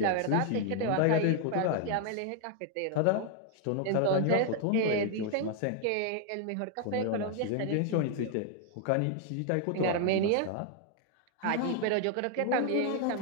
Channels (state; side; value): different; both; correlation 0.00